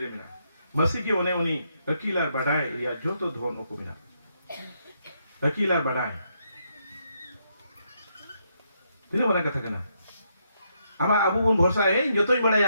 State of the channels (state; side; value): inverted; both; correlation -0.77